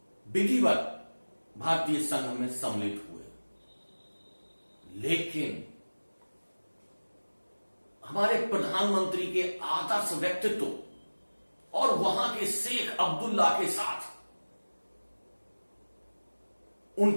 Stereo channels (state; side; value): inverted; both; correlation -1.00